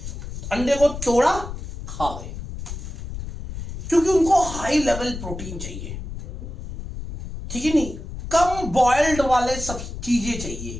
अंडे को तोड़ा खा गए, क्योंकि उनको हाई लेवल प्रोटीन चाहिए, ठीक है नहीं? कम बॉइल्ड वाले सब चीजें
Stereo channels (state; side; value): noise; left; rumble, 8 dB below the sound